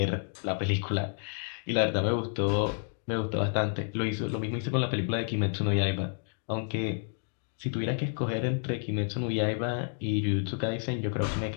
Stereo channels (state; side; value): silent; right; 58 dB below the other